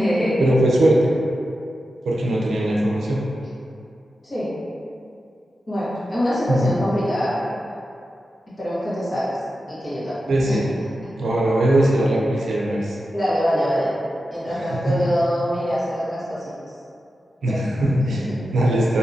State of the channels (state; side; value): normal; both; correlation 0.90